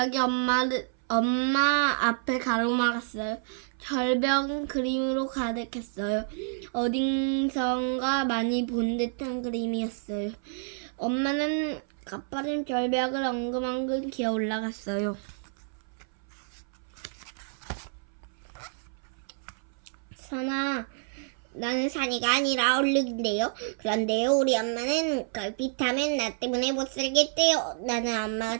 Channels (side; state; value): left; silent; 59 dB below the other